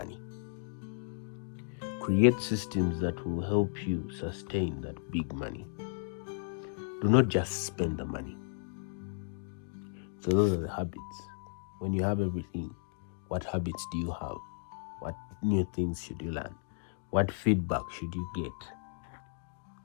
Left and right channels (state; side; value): silent; right; digital silence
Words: Create systems that will help you sustain that big money. Do not just spend the money. So those are the habits. When you have everything, what habits do you have? What new things should you learn? What feedback should you get?